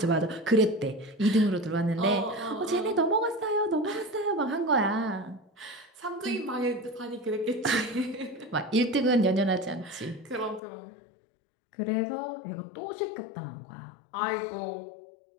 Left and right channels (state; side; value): drops out; right; at 10.6 s